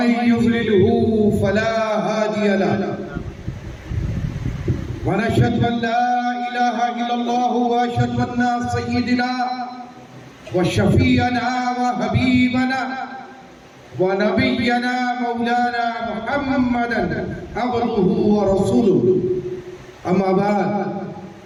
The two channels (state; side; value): identical; both; correlation 1.00